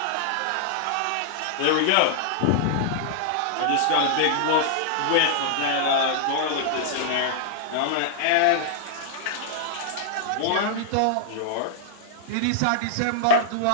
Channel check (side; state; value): both; different; correlation -0.01